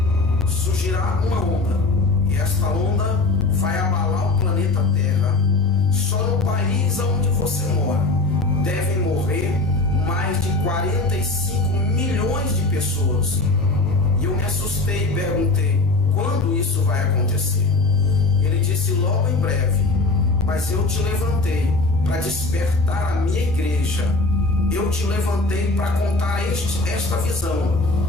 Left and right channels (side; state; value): right; quieter; 3.2 dB